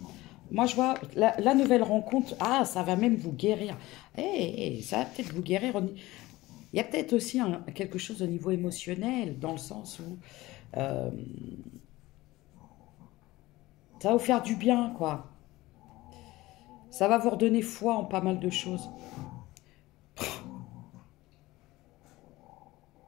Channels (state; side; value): quieter; right; 18.8 dB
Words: Moi, je vois la nouvelle rencontre. Ah, ça va même vous guérir. Ça va peut-être vous guérir. Il y a peut-être aussi quelque chose au niveau émotionnel, dans le sens où euh, ça va vous faire du bien, quoi. Ça va vous redonner foi en pas mal de choses.